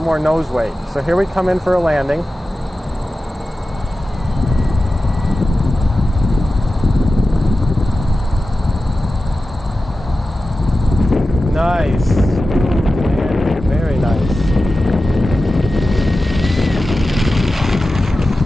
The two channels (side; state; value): both; normal; correlation 0.94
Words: nose weight. So here we come in for a landing. Nice. Very nice.